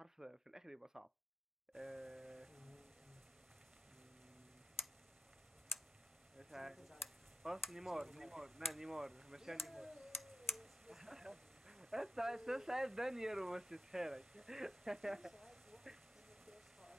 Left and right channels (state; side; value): normal; both; correlation 0.93